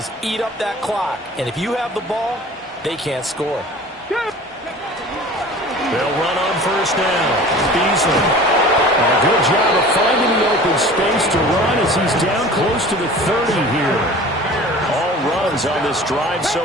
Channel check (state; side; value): normal; both; correlation 0.42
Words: eat up that clock. And if you have the ball, they can't score. They'll run on 1st down. Beasley. And a good job of finding the open space to run as he's down close to the 30 here. All runs on this drive